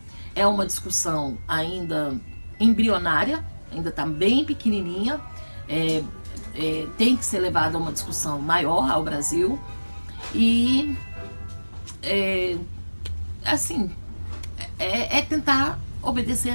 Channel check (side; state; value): both; inverted; correlation -1.00